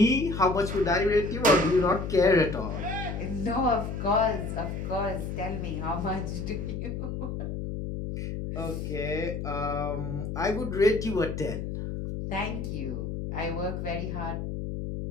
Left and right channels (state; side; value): noise; left; hum, 4 dB below the sound